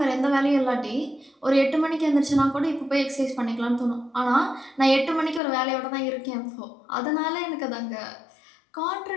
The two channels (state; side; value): drops out; right; at 5.4 s